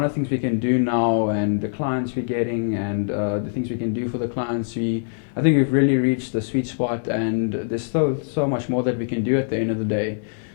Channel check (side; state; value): right; silent; digital silence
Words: of things we can do now, and the clients we're getting, and the things we can do for the clients, I think we've really reached the sweet spot, and there's still so much more that we can do at the end of the day.